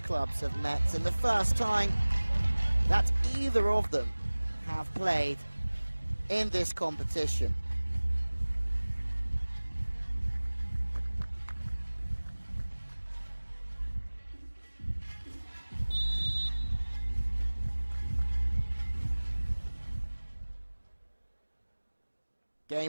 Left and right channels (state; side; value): inverted; both; correlation -1.00